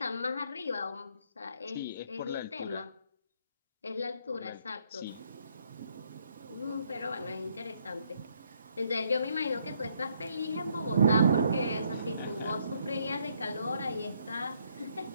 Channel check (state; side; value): inverted; both; correlation -0.70